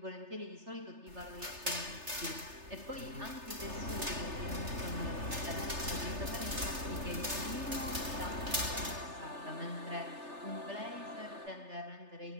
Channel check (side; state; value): left; late; 3.3 ms